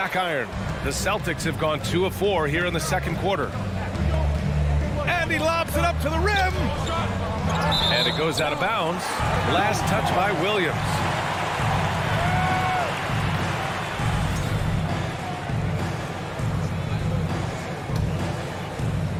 iron. The Celtics have gone 2 of 4 here in the second quarter. And he lobs it up to the rim. And it goes out of bounds. Last touch by Williams.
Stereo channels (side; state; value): both; identical; correlation 1.00